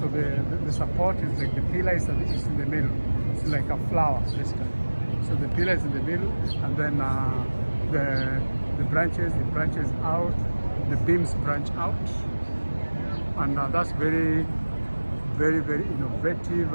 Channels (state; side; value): inverted; both; correlation -1.00